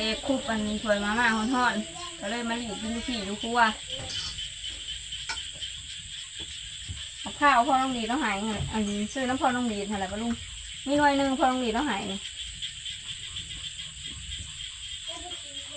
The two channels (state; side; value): identical; both; correlation 1.00